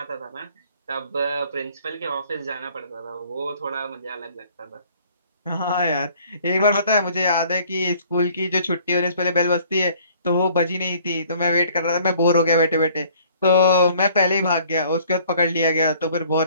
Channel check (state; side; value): inverted; both; correlation -0.56